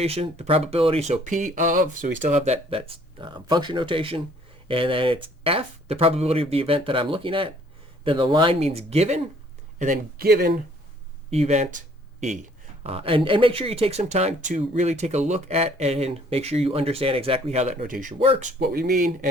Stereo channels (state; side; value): normal; both; correlation 0.59